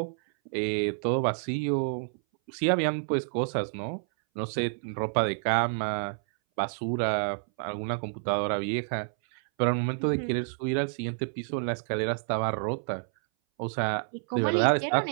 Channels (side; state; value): left; silent; 59 dB below the other